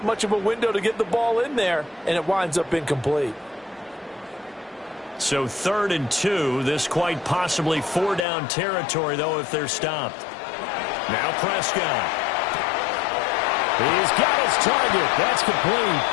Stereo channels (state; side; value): drops out; right; at 8.2 s